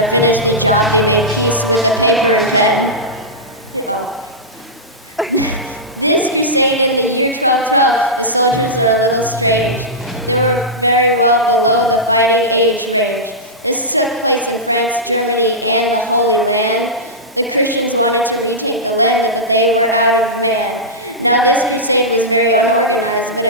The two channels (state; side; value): normal; both; correlation -0.12